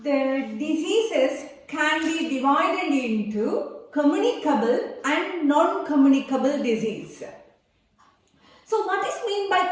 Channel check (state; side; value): identical; both; correlation 1.00